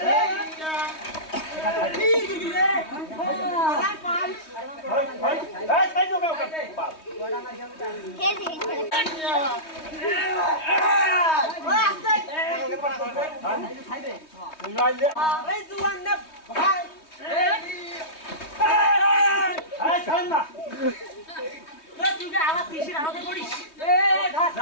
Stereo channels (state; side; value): late; right; 3.2 ms